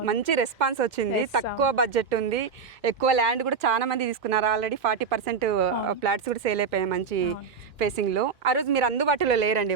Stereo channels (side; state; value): left; quieter; 5.7 dB